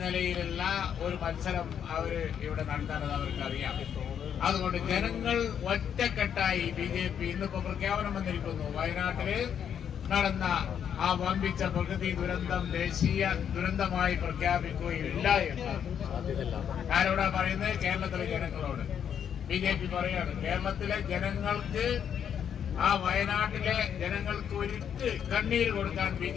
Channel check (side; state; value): right; quieter; 8.5 dB